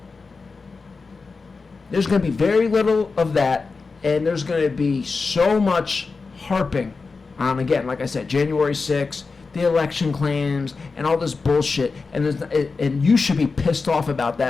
There's going to be very little of that, and there's going to be so much harping on, again, like I said, January 6th, the election claims, and all this bullshit. And you should be pissed off about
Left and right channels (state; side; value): quieter; right; 4.4 dB